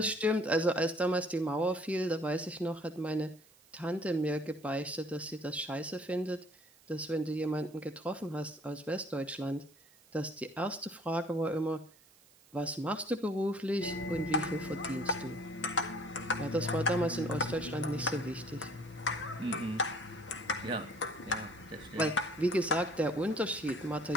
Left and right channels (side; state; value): right; noise; hiss, 28 dB below the sound